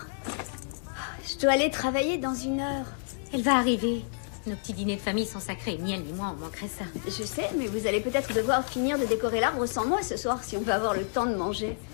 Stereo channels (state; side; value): silent; right; digital silence